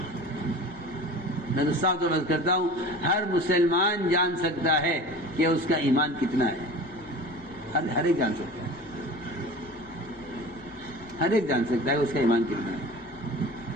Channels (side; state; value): both; normal; correlation 0.37